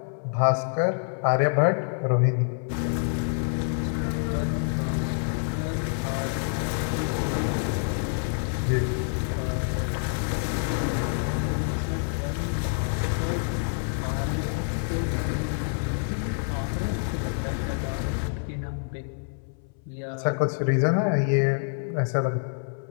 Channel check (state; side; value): silent; right; 60 dB below the other